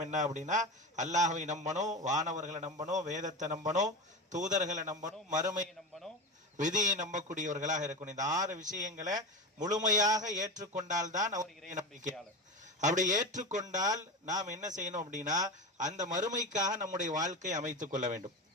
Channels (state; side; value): normal; both; correlation 0.23